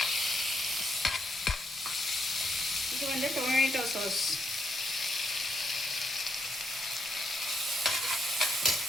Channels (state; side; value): normal; both; correlation 0.77